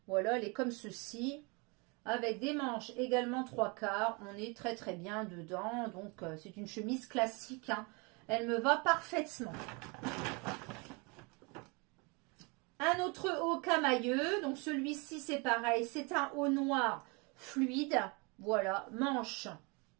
Voilà, elle est comme ceci. Avec des manches également 3/4. On est très très bien dedans. Donc c'est une chemise classique. Hein. Elle me va parfaitement. Un autre haut camailleux, donc celui-ci c'est pareil, c'est un haut noir fluide, voilà, manche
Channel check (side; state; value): left; quieter; 30.0 dB